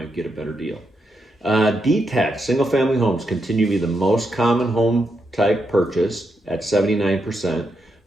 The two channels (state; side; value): normal; both; correlation 0.83